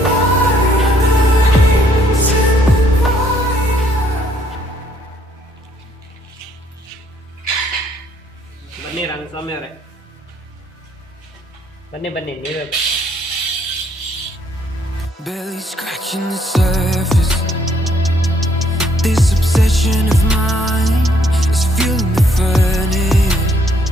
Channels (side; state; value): both; normal; correlation 0.67